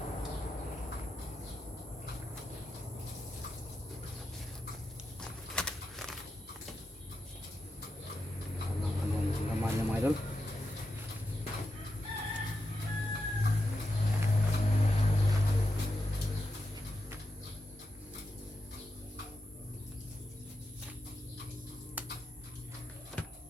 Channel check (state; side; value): normal; both; correlation 0.88